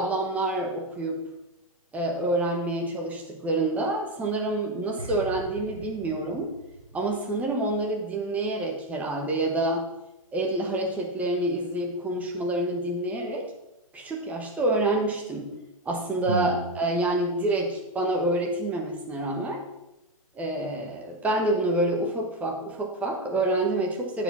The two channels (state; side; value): normal; both; correlation 0.10